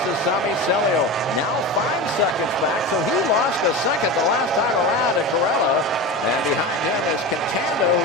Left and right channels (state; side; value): normal; both; correlation 0.26